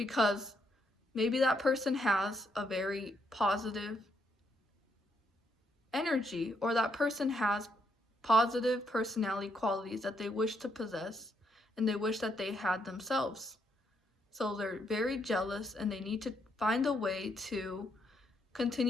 maybe that person has a very positive energy, or that person has positive personality qualities that they wish to possess and they wish that they had themselves. So they're very jealous and they need to find a way to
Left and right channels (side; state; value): both; normal; correlation 0.75